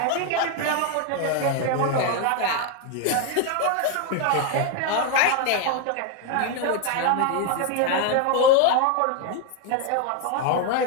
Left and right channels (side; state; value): both; different; correlation 0.01